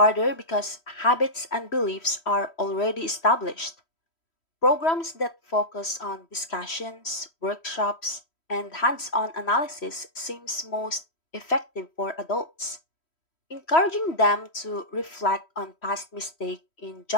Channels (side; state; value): right; late; 3.1 ms